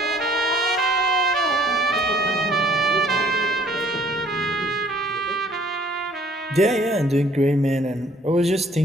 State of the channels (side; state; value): both; normal; correlation 0.59